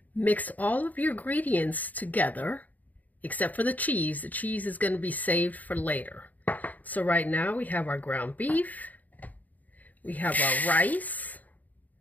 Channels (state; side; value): late; right; 0.078 ms